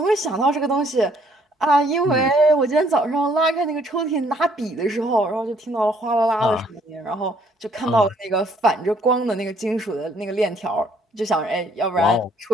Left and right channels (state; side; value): normal; both; correlation 0.64